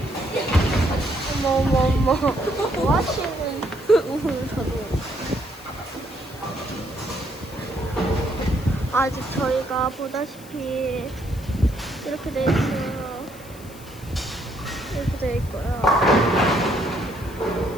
어머. 뭐 하시는? 저도. 아직 저희가 보다시피 이렇게 돼 있어요. 이렇게 돼 있고요.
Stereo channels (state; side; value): noise; left; hiss, 20 dB below the sound